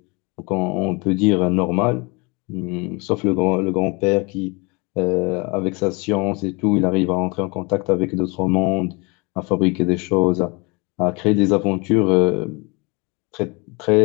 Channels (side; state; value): right; quieter; 28.5 dB